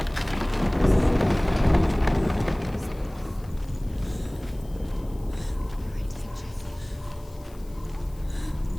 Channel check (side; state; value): left; noise; hiss, 26 dB below the sound